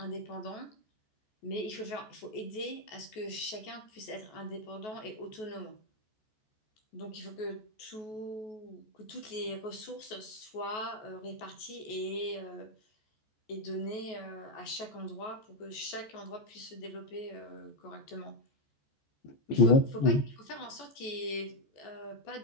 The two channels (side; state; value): right; late; 14 ms